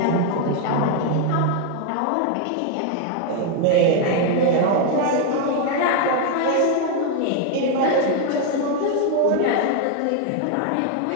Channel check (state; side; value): different; both; correlation 0.00